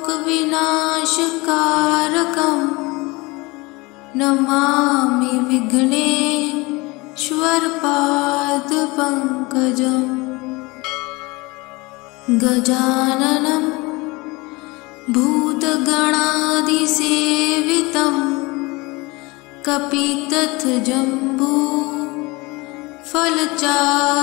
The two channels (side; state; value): right; quieter; 24.1 dB